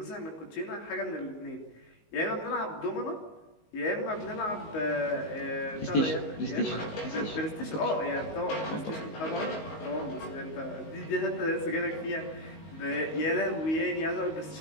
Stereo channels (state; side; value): late; right; 19 ms